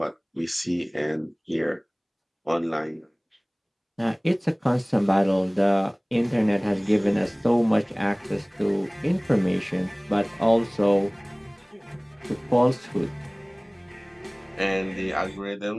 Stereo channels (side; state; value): both; identical; correlation 1.00